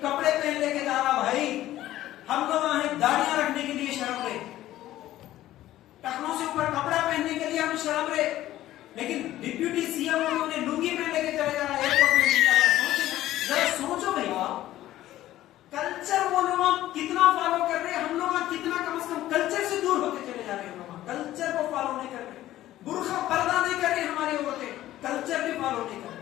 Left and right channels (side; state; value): right; quieter; 14.3 dB